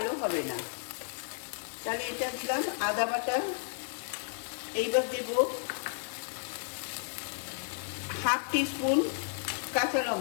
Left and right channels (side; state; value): right; silent; digital silence